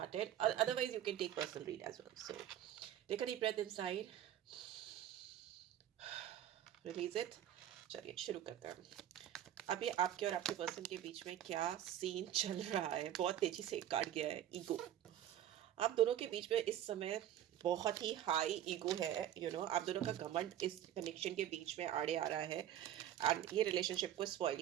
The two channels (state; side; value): quieter; left; 11.4 dB